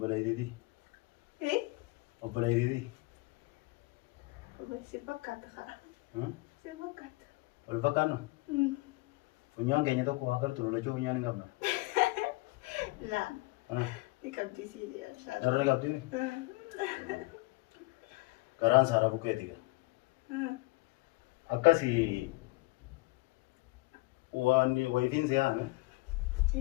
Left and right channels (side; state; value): right; quieter; 22.8 dB